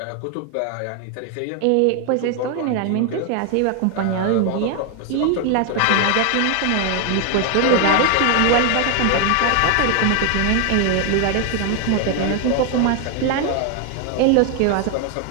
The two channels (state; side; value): different; both; correlation 0.00